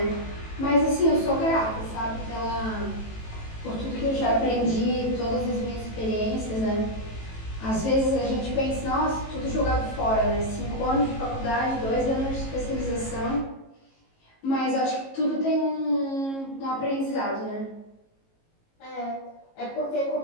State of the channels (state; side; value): late; right; 18 ms